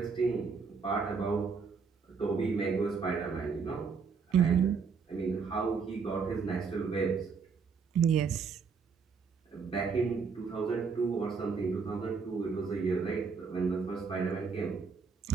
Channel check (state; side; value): quieter; left; 5.4 dB